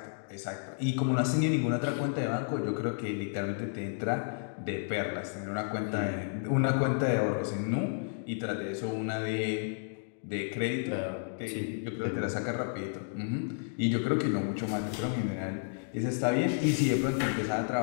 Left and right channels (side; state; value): right; silent; digital silence